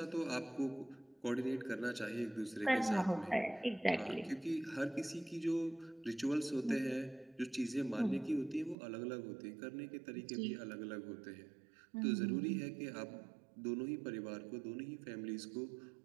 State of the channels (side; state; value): left; drops out; at 8.8 s